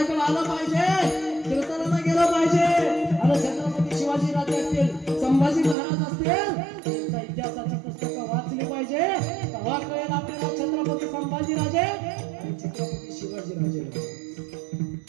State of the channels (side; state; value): left; drops out; at 5.8 s